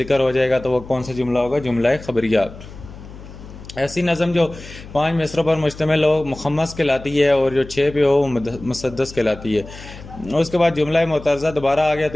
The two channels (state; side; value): noise; left; hum, 16 dB below the sound